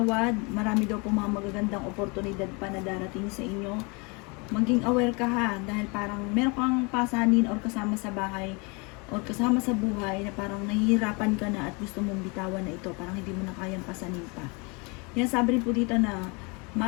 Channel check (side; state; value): right; quieter; 30.0 dB